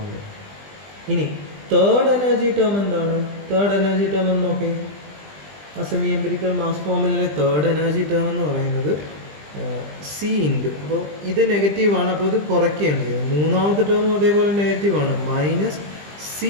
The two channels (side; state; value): left; late; 20 ms